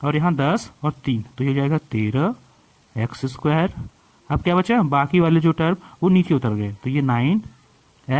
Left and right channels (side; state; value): both; identical; correlation 1.00